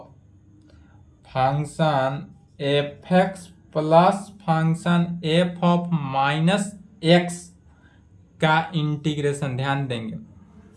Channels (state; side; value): identical; both; correlation 1.00